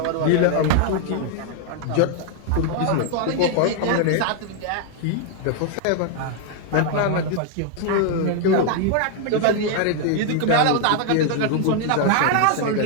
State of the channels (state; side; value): different; both; correlation 0.00